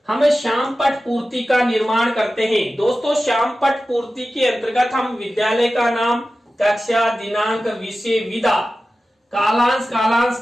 हम श्यामपट्ट पूर्ति का निर्माण करते हैं। दोस्तों, श्यामपट्ट पूर्ति के अंतर्गत हम विद्यालय का नाम, कक्षा, दिनांक, विषय, विधा, कालांश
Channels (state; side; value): normal; both; correlation 0.94